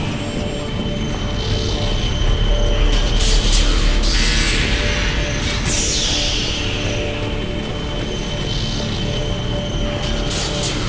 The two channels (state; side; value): identical; both; correlation 1.00